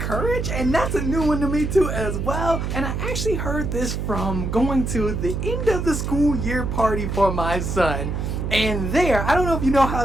and that's a new one to me too as well. And I actually heard this from going to the end of the school year party for my son. And there, I don't know if you know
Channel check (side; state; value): right; noise; hum, 2 dB below the sound